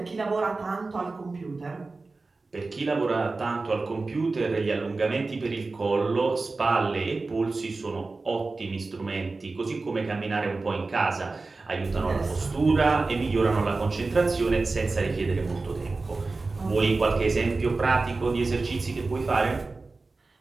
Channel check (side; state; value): left; quieter; 3.7 dB